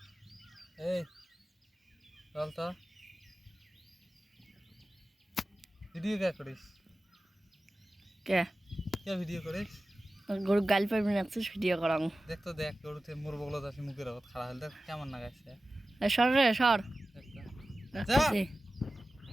এই চল তো ভিডিও কে করিস কে কে ভিডিও করিস গরু গাল পারবি না তো ভিডিও করাম দেখ তো দেখ গরুতে মোর বগলত আছে মুখের আগত খাড়া হলে দেখ কেমন লাগাইছে সর রে সর যা।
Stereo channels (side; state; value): both; normal; correlation 0.95